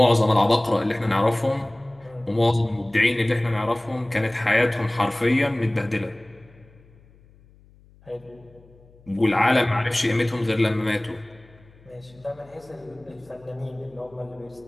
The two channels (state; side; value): noise; left; hum, 27 dB below the sound